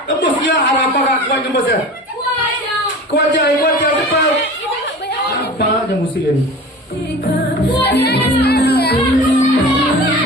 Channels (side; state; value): both; normal; correlation 0.37